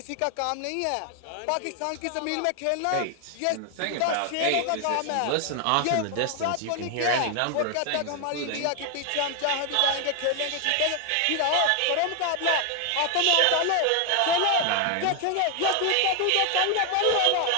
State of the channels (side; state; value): both; different; correlation 0.00